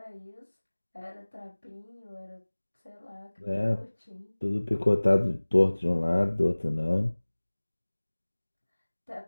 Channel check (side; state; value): both; inverted; correlation -1.00